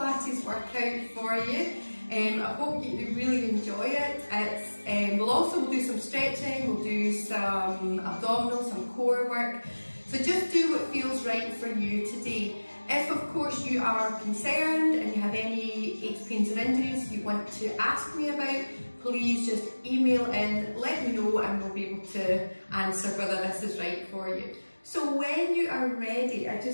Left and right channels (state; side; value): inverted; both; correlation -1.00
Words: workout for you. I hope you really enjoy it. We'll do some stretching, we'll do some abdominal, some core work. So just do what feels right for you today. If of course you are concerned and you have any aches, pains or injuries you want to ask me about, please just email in, let me know, and we'll be able to answer whether this is right for you. So when you are ready, I